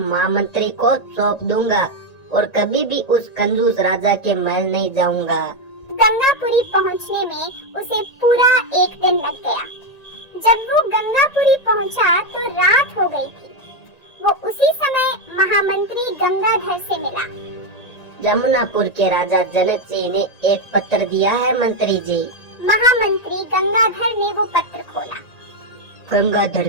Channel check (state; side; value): late; right; 1.9 ms